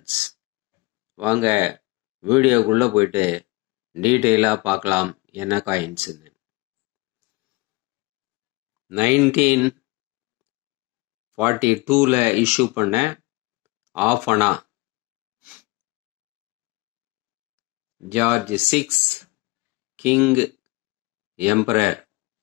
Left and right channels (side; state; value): right; quieter; 24.2 dB